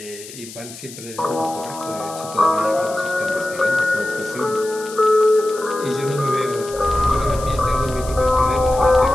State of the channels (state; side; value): noise; left; hiss, 15 dB below the sound